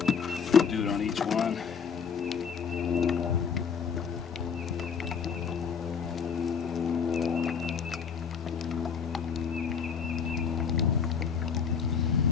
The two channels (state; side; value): quieter; right; 6.5 dB